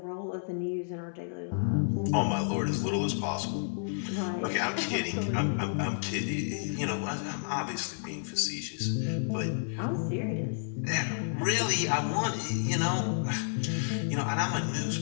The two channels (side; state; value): right; silent; 57 dB below the other